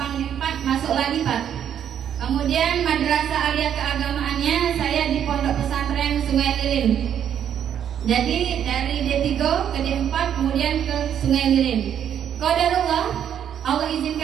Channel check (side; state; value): left; quieter; 9.3 dB